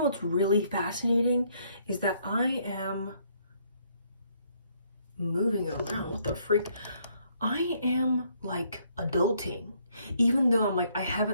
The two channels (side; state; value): both; inverted; correlation -0.69